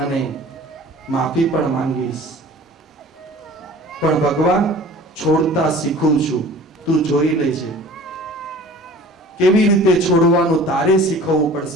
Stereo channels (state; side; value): normal; both; correlation 0.45